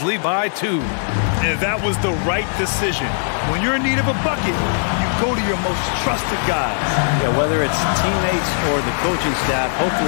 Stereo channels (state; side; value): silent; right; digital silence